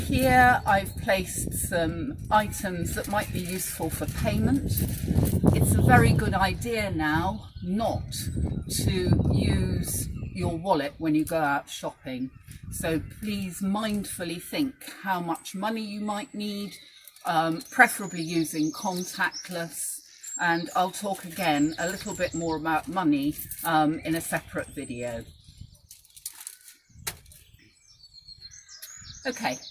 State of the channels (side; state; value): both; identical; correlation 1.00